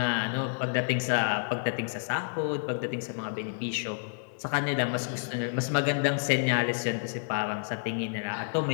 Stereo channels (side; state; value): right; silent; 58 dB below the other